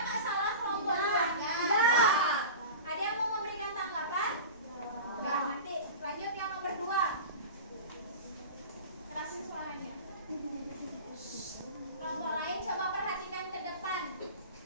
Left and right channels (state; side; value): inverted; both; correlation -0.33